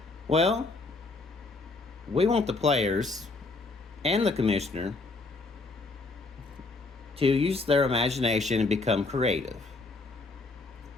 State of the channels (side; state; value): right; quieter; 3.6 dB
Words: Well, we want the players and the commissioner to use their imagination and become creative.